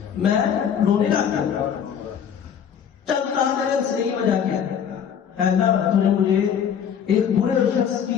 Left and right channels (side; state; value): right; quieter; 8.1 dB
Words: میں رونے لگ گیا۔ چل کہا تیرے ہنسنے کی وجہ کیا ہے؟ اللہ تو نے مجھے ایک برے شخص